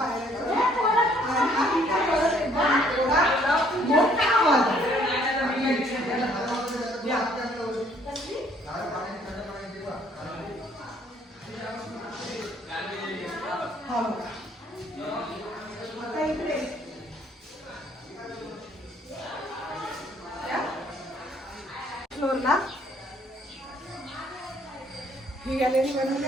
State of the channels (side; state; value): both; normal; correlation 0.63